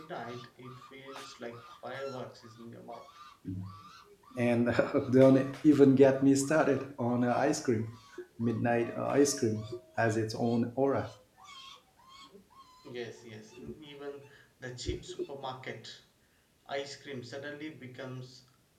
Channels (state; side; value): identical; both; correlation 1.00